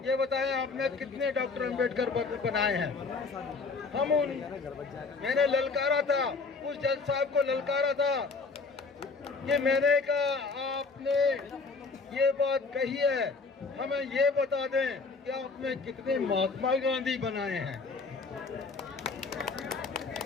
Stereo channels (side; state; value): right; quieter; 4.3 dB